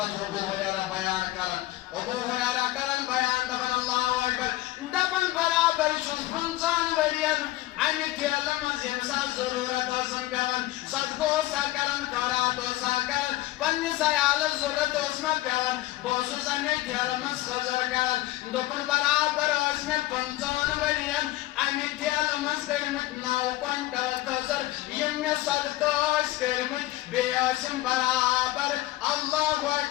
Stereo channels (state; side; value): quieter; right; 16.9 dB